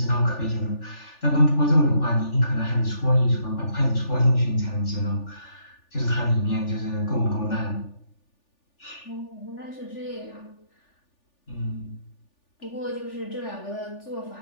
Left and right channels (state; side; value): late; right; 3.4 ms